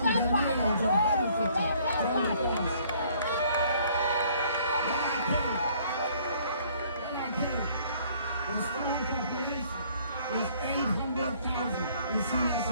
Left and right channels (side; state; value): both; inverted; correlation -0.60